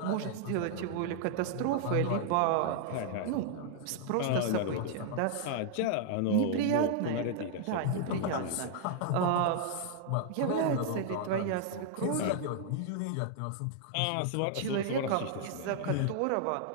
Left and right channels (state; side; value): different; both; correlation 0.00